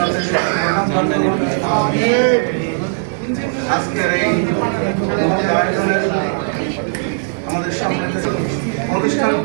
দান করুন। আজকের এই আয়োজনের আমাদের সামনে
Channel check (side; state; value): left; silent; digital silence